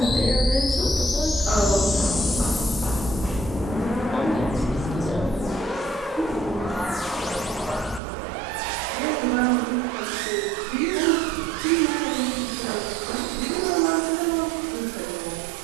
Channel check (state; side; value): drops out; left; at 8.0 s